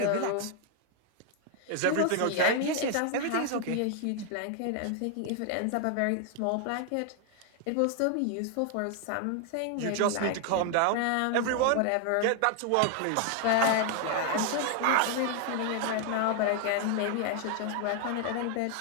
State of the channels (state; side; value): different; both; correlation 0.00